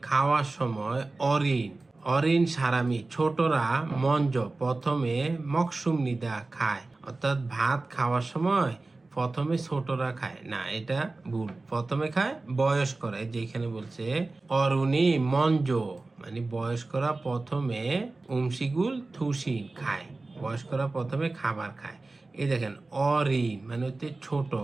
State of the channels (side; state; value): left; quieter; 3.3 dB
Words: খাওয়ার সময় অরিন অরিন সারামি ছোটরা মঞ্জ প্রথমে মকসুম নিদা খায়, অর্থাৎ ভাত খাওয়ার সময় প্রথমে ছোটরা খায় না, এটা ভুল, প্রথমে খায় বয়স্করা, যেখানে বলছে অরুণী মঞ্জ মানে বয়স্করা প্রথমে উমশিগুল থুসি খায়, বয়স্করা প্রথমে খাবার খায়। এই দেখেন অরিন মানে হচ্ছে ছোট